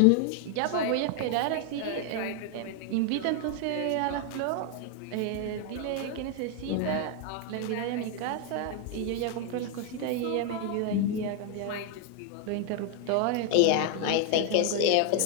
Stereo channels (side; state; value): both; different; correlation 0.00